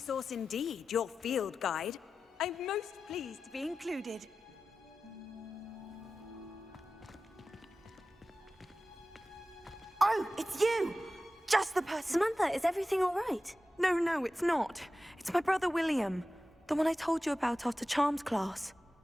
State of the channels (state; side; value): normal; both; correlation 0.94